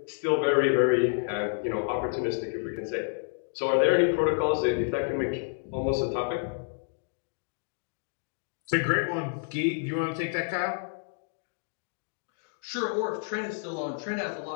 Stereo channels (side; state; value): right; silent; digital silence